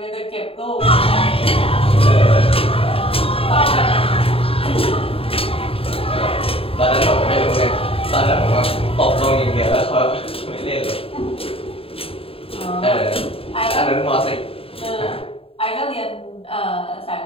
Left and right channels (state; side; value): late; right; 0.27 ms